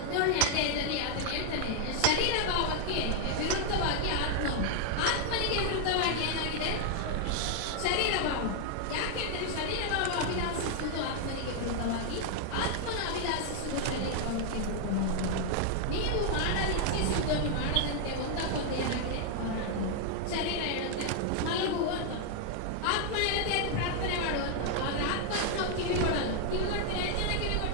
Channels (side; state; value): both; different; correlation 0.00